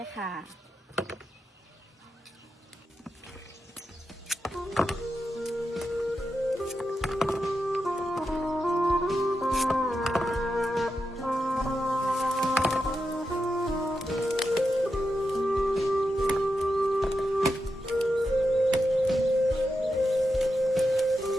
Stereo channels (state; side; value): normal; both; correlation 0.88